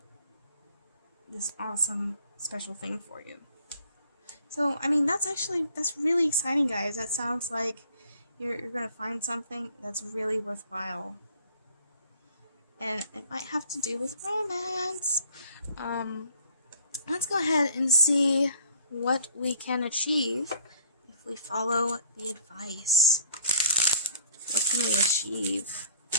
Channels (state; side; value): inverted; both; correlation -0.54